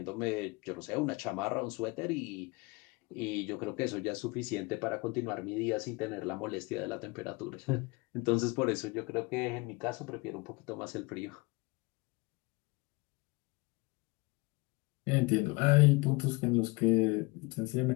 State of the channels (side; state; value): right; quieter; 25.9 dB